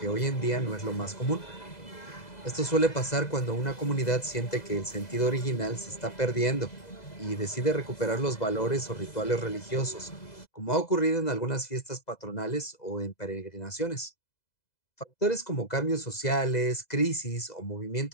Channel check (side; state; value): right; late; 2.0 ms